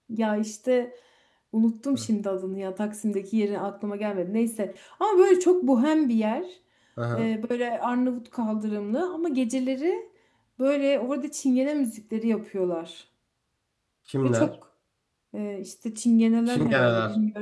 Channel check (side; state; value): both; identical; correlation 1.00